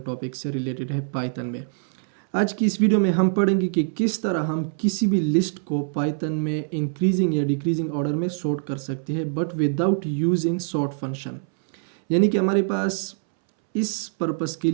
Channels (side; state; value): left; silent; 63 dB below the other